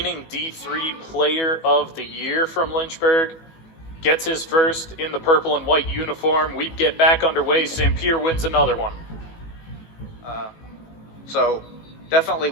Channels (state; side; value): late; right; 18 ms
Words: D3 Player of the Year from Lynchburg gets his first in the purple and white uniform. We get back underway. Sampere wins another one. So definitely